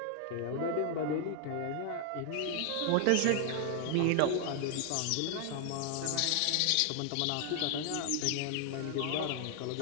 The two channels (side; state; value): both; different; correlation 0.00